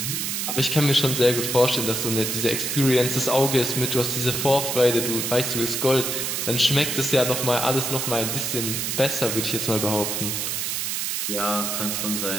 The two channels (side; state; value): right; noise; hiss, 1 dB below the sound